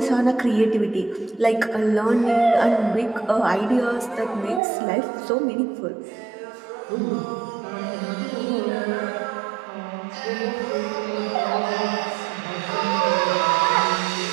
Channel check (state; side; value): drops out; left; at 4.6 s